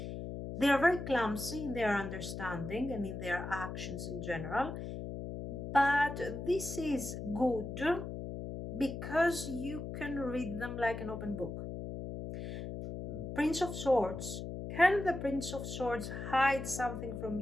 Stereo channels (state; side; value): noise; left; hum, 7 dB below the sound